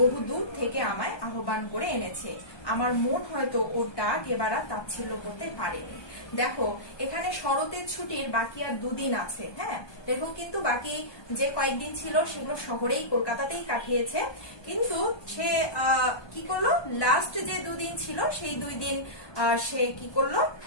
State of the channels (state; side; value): late; right; 1.2 ms